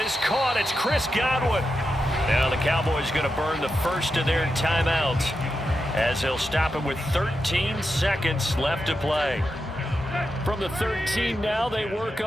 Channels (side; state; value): both; normal; correlation 0.87